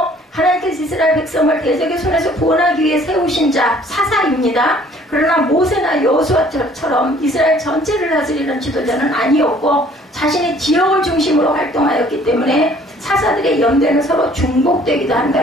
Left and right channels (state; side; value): normal; both; correlation 0.56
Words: 하나님께서 이스라엘 백성을 대적의 손에서 구원하기 위해 세우신 자 사사입니다. 그러나 모세나 여호수아처럼 이스라엘 전체를 다스리는 지도자는 아니었고 자신의 지역을 중심으로 활동하였기 때문에 사사들의 연대는 서로 중복되기도